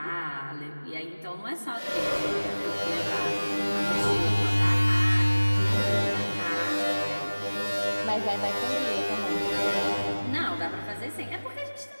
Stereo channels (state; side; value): inverted; both; correlation -1.00